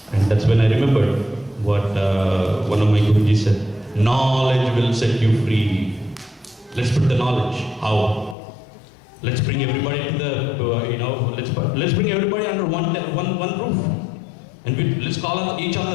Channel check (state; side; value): drops out; right; at 8.3 s